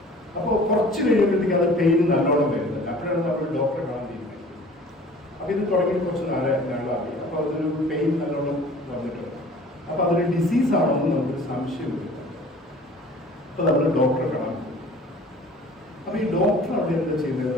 അപ്പോൾ കുറച്ച് കഴിയുമ്പോഴത്തേക്ക് അത് പെയിൻ നല്ലോണം വരുന്നത്. അപ്പോഴാണ് നമ്മൾ ഡോക്ടറെ കാണാൻ തീരുമാനിക്കുന്നത്. അപ്പോൾ ഇത് തുടങ്ങി കുറച്ച് നാളായി. അപ്പോൾ അതൊരു പെയിൻ നല്ലോണം വന്നിട്ടുണ്ട്. അപ്പോൾ അതൊരു ഡിസീസാണെന്ന് നമുക്കൊരു സംശയം വരും. അപ്പോൾ നമ്മൾ ഡോക്ടറെ കാണാൻ പോകും. അപ്പോൾ ഈ ഡോക്ടർ അവിടെ എന്താ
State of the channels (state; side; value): normal; both; correlation 0.47